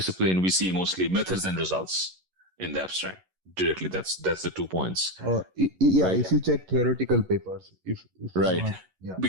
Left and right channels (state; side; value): late; left; 11 ms